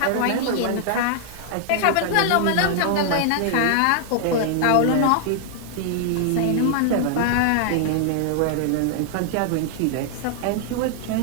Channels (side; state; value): both; different; correlation 0.00